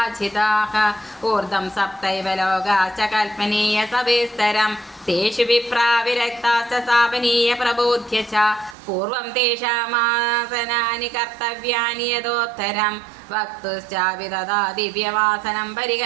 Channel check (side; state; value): left; drops out; at 8.8 s